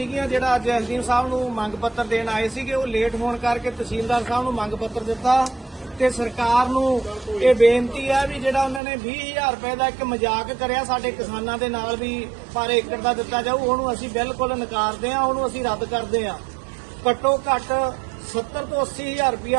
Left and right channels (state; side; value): drops out; left; at 8.8 s